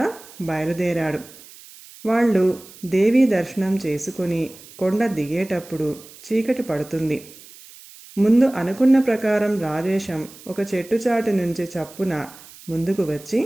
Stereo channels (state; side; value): noise; right; hiss, 20 dB below the sound